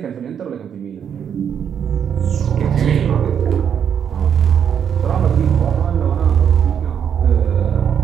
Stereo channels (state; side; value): quieter; left; 8.1 dB